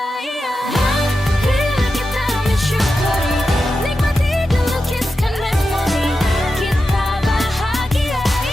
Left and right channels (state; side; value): normal; both; correlation 0.90